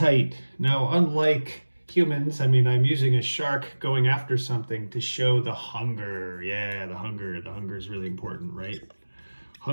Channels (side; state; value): both; inverted; correlation -1.00